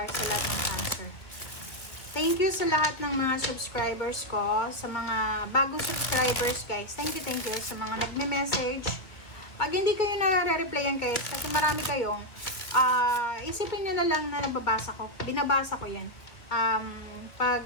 sa lahat ng Cancer. Thank you sa lahat ng mga subscribers ko, sa mga bagong subscribers guys. Thank you sa mga nagme-message. Pag hindi kayo nare-replyan guys, kasi marami kayong isipin nyo na lang na nababasa ko. Binabasa ko yan.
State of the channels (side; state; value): right; late; 1.9 ms